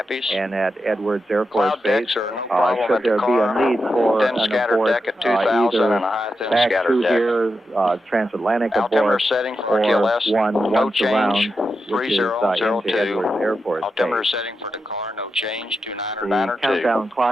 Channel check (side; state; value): both; normal; correlation 0.88